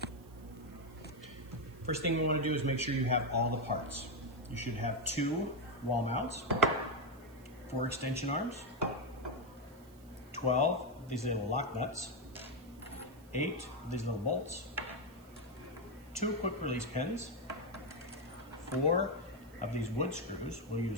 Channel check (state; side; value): noise; right; hiss, 26 dB below the sound